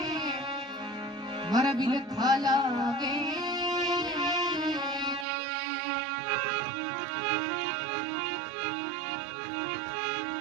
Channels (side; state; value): left; drops out; at 5.2 s